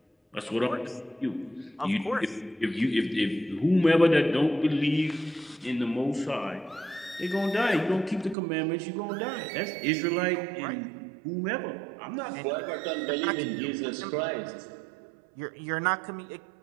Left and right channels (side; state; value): left; drops out; at 8.3 s